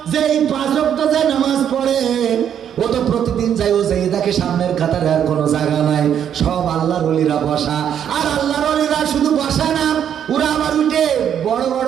যেই 5 ওয়াক্ত যে নামাজ পড়ে ও তো প্রতিদিন যাই, ও যাই দেখে সামনের কাতারে আর কোনো জায়গা নাই, সব আল্লাহর ওলিরা বসা। আর আল্লাহর ওলিরা শুধু বসা না, ওরা আবার উঠে বড়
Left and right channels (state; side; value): quieter; left; 9.1 dB